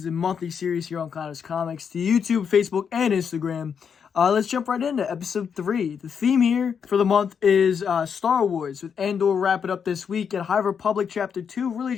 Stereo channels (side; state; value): right; quieter; 6.9 dB